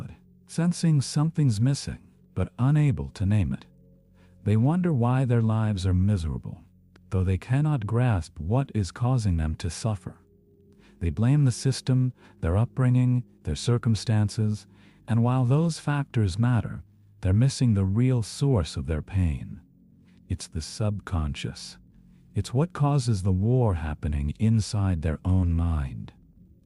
sensing something's missing, but unable to name it. They wonder why their lives are miserable, though they cannot grasp what is causing them to suffer. They blame the system, their upbringing, their circumstances, and while those factors matter, they're missing the real source of their pain. It's the subconscious. It's what causes the war happening inside their own mind.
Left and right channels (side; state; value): both; identical; correlation 1.00